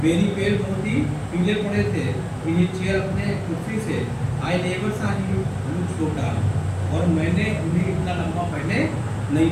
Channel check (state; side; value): identical; both; correlation 1.00